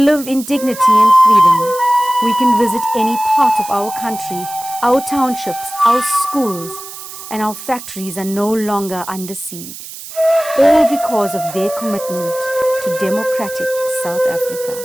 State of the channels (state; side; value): noise; right; hiss, 13 dB below the sound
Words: live in dignity and freedom. We can visit any part of our country, our townships, our schools, and our factories are no longer under siege. All because of their commitment to democratic South Africa.